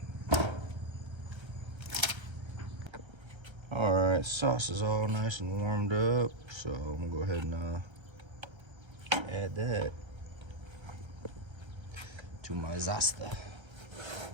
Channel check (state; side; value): late; left; 1.3 ms